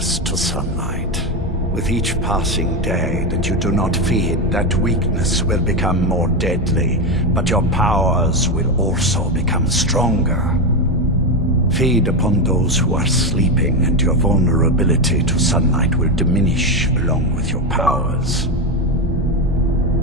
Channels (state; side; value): normal; both; correlation 0.12